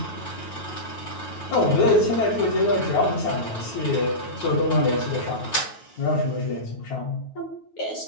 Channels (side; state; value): right; late; 9.3 ms